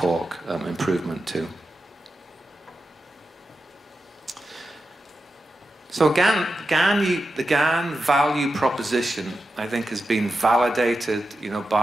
improvement too. So the GaN value proposition, I think, has been validated,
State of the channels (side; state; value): both; normal; correlation 0.90